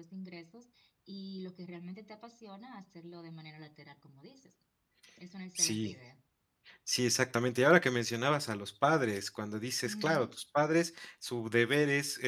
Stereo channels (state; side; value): identical; both; correlation 1.00